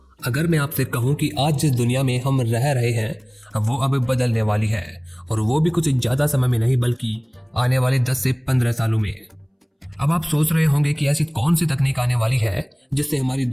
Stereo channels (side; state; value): both; identical; correlation 1.00